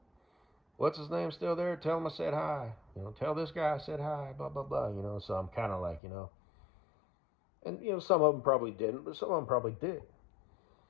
What's his name still there? Tell him I said hi. You know, tell this guy I said hi, blah, blah, blah, you know. So I'm kind of like, you know. And, you know, some of them probably didn't, but some of them probably did.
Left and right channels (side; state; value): right; drops out; at 6.0 s